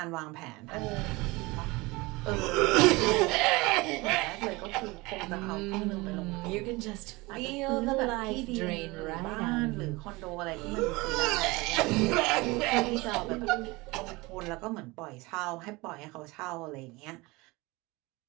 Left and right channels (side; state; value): left; quieter; 23.2 dB